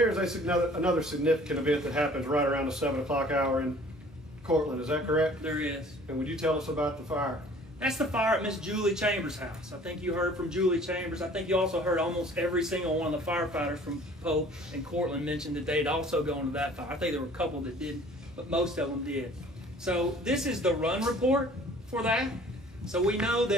another significant event that happens right around the 7 o'clock hour in Cortland. Is that correct? There is. And would you tell us about the fire? That's the fire at Miss Julie Chambers' house. I think you heard from Julie Chambers. I think you also heard almost every single one of the firefighters from Pope and Cortland mentioned that they'd also gone to that fire. I think there were a couple that didn't, but most of them did. So this is the run report for that. So we know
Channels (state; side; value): normal; both; correlation 0.51